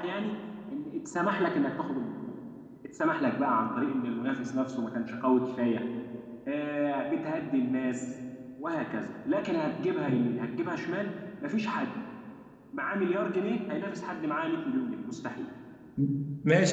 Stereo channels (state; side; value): identical; both; correlation 1.00